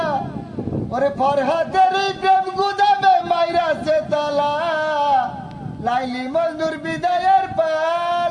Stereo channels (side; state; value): both; identical; correlation 1.00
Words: ওরে ফরহাদের প্রেম গুদামে মাইরাছে তালা। লাইলি মজদুর বিদায়ের